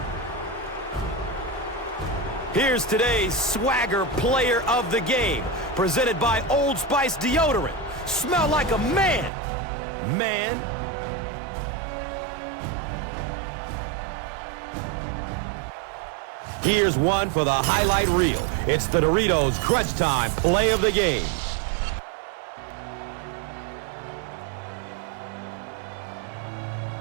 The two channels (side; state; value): left; drops out; at 9.3 s